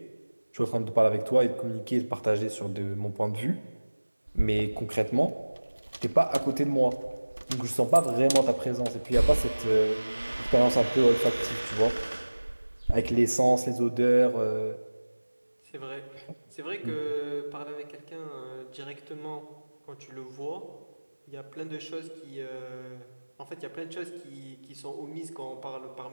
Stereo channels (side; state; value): both; inverted; correlation -1.00